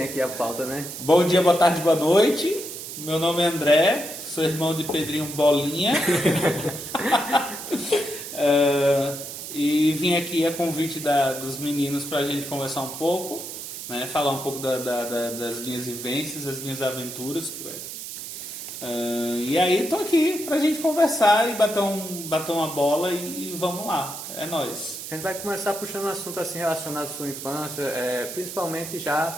aqui a pauta, né? Bom dia, boa tarde, boa noite. Meu nome é André, sou irmão de Pedrinho Bolinha. E vim aqui a convite dos meninos para a gente conversar um pouco, né? Falar um pouco das minhas vivências, das minhas aventuras. E aí tô aqui para a gente conversar e bater uma bola e vamos lá. É nóis. A gente vai começar puxando um assunto assim relacionado à sua infância, principalmente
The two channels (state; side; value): noise; right; hiss, 9 dB below the sound